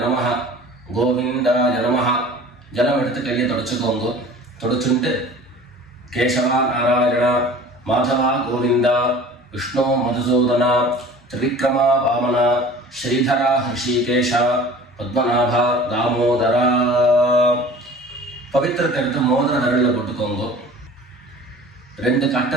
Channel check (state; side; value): normal; both; correlation 0.44